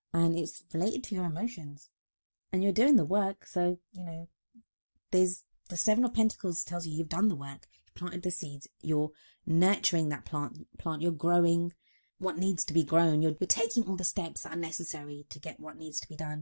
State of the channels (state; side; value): inverted; both; correlation -1.00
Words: And it's related to your emotions. And you're doing the work, so, you know, there's the Seven of Pentacles tells you you've done the work. You've planted the seeds. You're nurturing that plant. You're growing what needs to be grown. You're taking all the steps that are necessary to get what needs to be